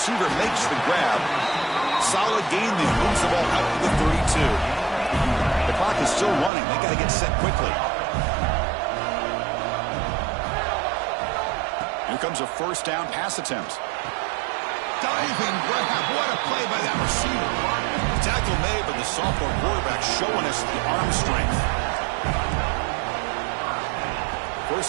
makes the grab. Solid gain there. Moves the ball out to the 32. The clock is still running. They got to get set quickly. Here comes a 1st down pass attempt. Diving grab. What a play by that receiver. The tackle made, but the sophomore quarterback showing us the arm strength.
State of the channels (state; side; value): drops out; left; at 6.5 s